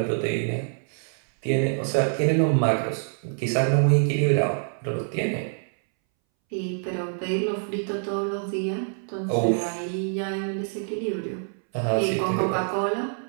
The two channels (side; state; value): left; silent; 61 dB below the other